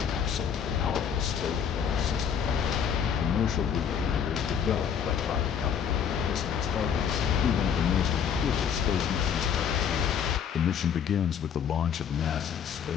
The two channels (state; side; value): quieter; right; 7.8 dB